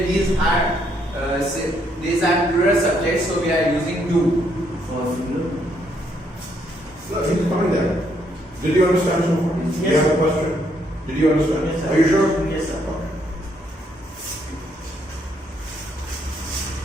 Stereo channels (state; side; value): normal; both; correlation 0.72